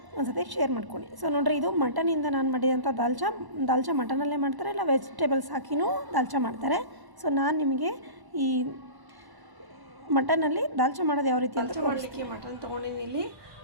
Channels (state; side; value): late; left; 1.0 ms